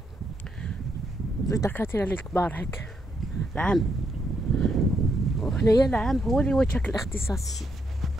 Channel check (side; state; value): both; normal; correlation 0.78